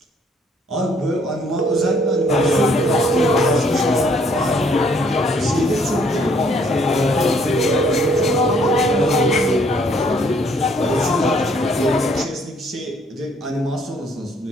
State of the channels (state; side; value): normal; both; correlation 0.64